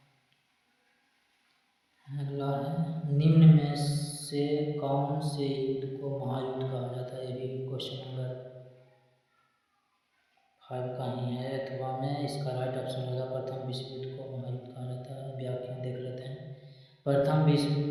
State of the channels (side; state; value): both; identical; correlation 1.00